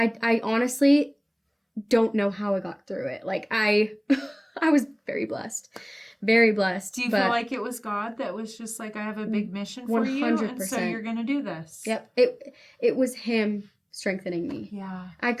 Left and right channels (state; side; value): identical; both; correlation 1.00